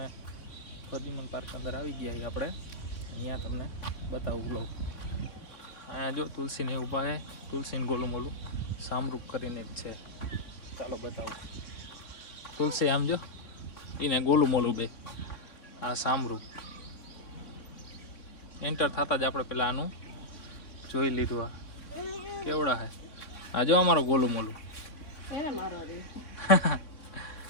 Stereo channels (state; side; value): late; right; 3.6 ms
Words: પ્રદ્યુમન પાર્ક અંદર આવી ગયા આપણે, અહીંયા તમને બતાવું વ્લોગ. અહીંયા જો તુલસીને ઊભા છે, તુલસીને ગોલું મોલું સામરૂપ કરીને જ છે. ચાલો બતાવું. તુલસી આમ જો, એને ગોલું મોલું બે, આ સામરૂપ. એન્ટર થતા જ આપણે પેલા આનું જોઈ લીધું. આ કેવડા હે, આ જો અમારો ગોલું મોલું.